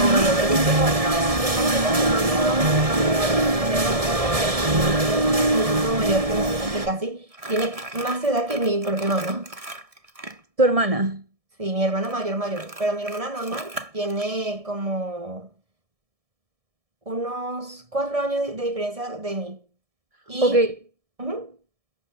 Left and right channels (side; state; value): left; late; 1.7 ms